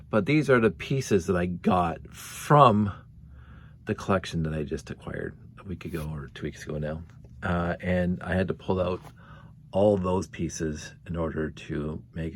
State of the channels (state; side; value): identical; both; correlation 1.00